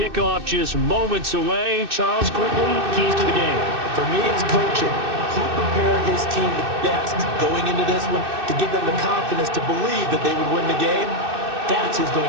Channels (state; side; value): late; left; 2.6 ms